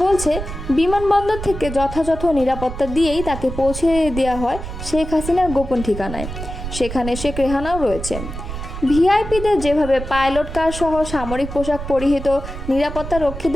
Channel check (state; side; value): noise; right; rumble, 8 dB below the sound